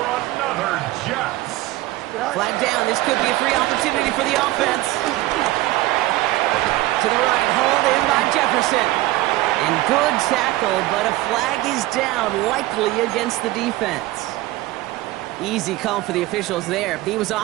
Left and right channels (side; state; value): left; quieter; 17.6 dB